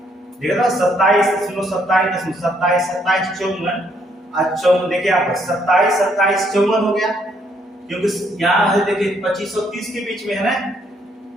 देखा था 27.27 54 देखिए आप 27 27 54 हो गया, क्योंकि यहाँ है देखिए 25 और 30 के बीच में है ना।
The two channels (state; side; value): normal; both; correlation 0.70